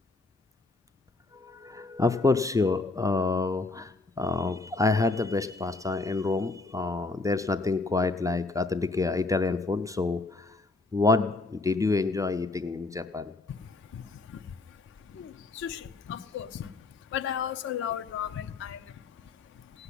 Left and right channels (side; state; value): right; quieter; 3.4 dB